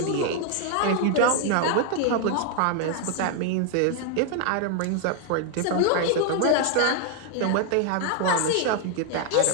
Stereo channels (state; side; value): different; both; correlation 0.00